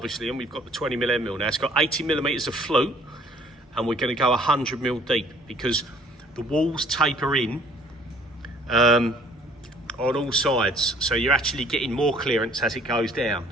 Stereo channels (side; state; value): both; normal; correlation 0.57